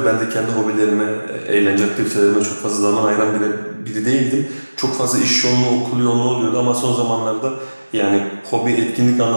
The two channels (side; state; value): both; inverted; correlation -1.00